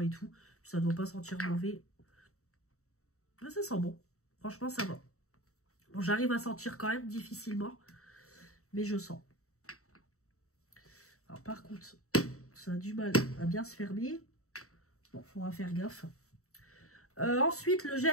et tout. Ça ne doit pas sentir mauvais. Mais ça sent bon. Franchement, ça va. Bon, j'arrive à sentir quand même difficilement. Mais je sens. Alors par contre, ça a du mal à bien se fermer. Bon, faudra faire gaffe. Ensuite, le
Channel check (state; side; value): late; right; 0.64 ms